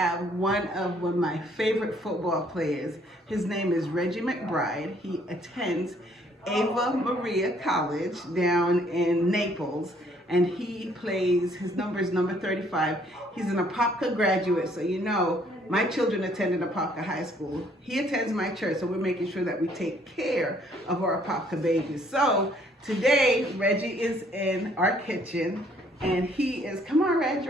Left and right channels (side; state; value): both; normal; correlation 0.63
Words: one of my favorite football players. His name is Reggie McBride. He attends Ava Marie College down in Naples, and he plays, his number is number 35. He's an Apopka graduate, so you know, my children attended Apopka High School. He attends my church, so we're making sure that we take care of our Apopka babies. So today, Reggie is in our kitchen, and he is, come on, Reg.